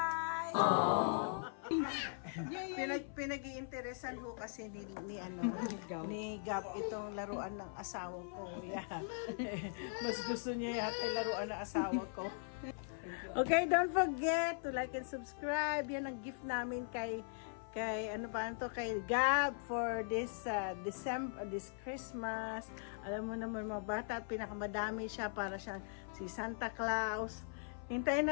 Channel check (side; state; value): right; silent; 51 dB below the other